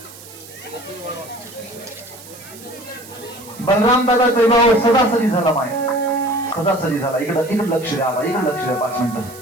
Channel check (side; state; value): right; noise; hiss, 18 dB below the sound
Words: बलराम दादाचा विवाह सदासरी झाला माय, सदासरी झाला. इकडं लक्ष द्या, इकडे लक्ष द्या 5 मिनिटं.